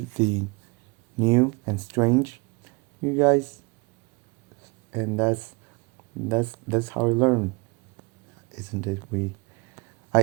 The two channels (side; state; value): left; quieter; 28.2 dB